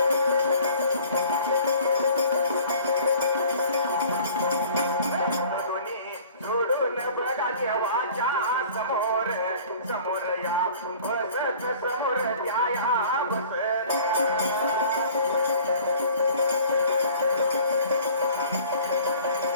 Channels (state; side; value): inverted; both; correlation -0.49